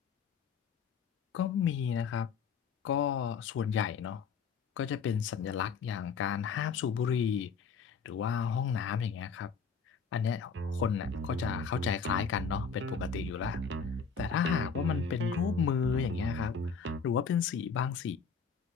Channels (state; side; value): quieter; right; 5.8 dB